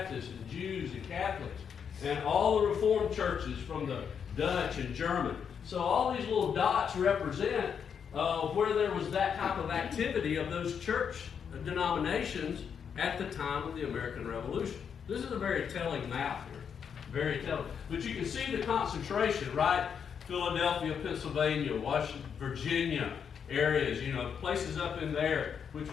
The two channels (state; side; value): quieter; right; 7.2 dB